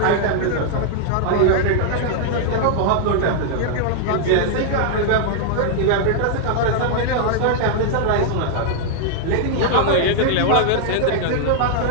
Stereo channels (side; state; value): both; different; correlation -0.01